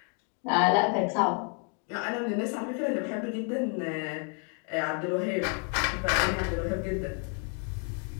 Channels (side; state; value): right; quieter; 37.9 dB